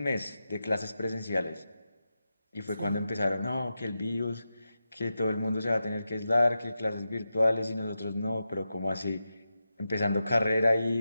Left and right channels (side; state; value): both; inverted; correlation -0.90